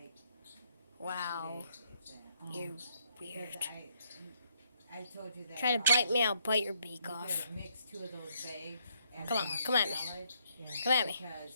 Wow. 2 days, if that. You're Because weird. I told you that. Try to bite me, I'll bite your beak You off. could mix 2 of those bags. and Come on, one come at me. salad Yeah. Come at me.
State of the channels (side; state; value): both; inverted; correlation -0.71